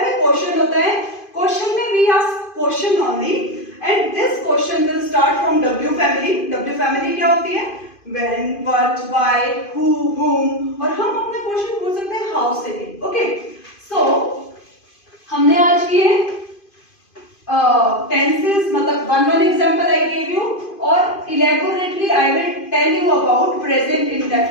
क्वेश्चन होता है. क्वेश्चन में we ask question only and this question will start from W family. W family क्या होती है? व्हेन, व्हाट, व्हाई, हु, हुम. और हम अपना क्वेश्चन पूछ सकते हैं हाउ से भी. ओके, सो हमने आज किए टेंसेस, मतलब one example I gave you, और elaborately I will tell you about present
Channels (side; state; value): right; late; 2.5 ms